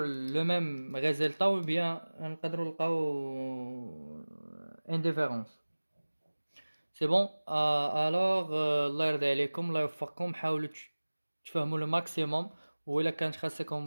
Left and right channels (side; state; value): both; inverted; correlation -1.00